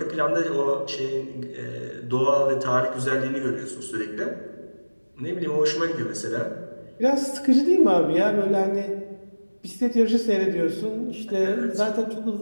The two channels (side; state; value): both; inverted; correlation -1.00